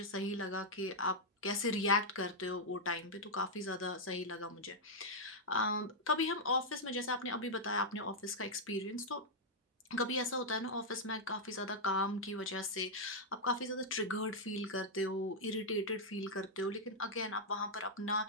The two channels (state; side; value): normal; both; correlation -0.04